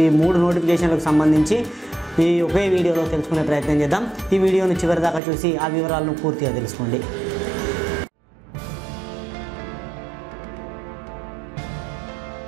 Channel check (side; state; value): left; drops out; at 5.2 s